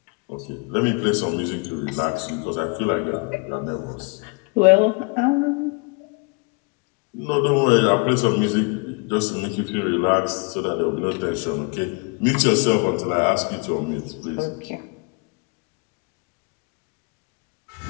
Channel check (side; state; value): right; quieter; 31.7 dB